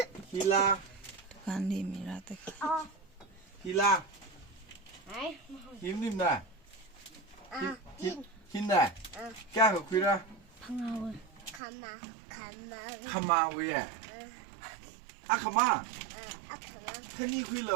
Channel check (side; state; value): left; drops out; at 11.6 s